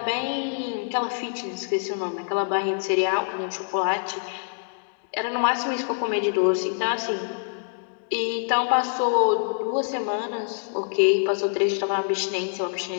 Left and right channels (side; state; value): right; silent; digital silence